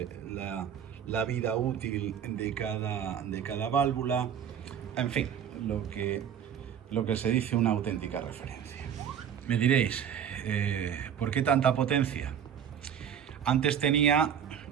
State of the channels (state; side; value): quieter; left; 8.6 dB